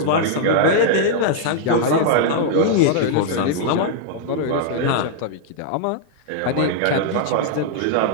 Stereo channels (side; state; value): both; different; correlation -0.01